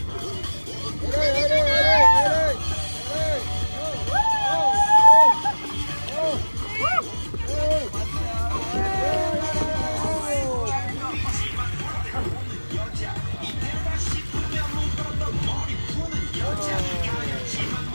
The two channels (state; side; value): inverted; both; correlation -1.00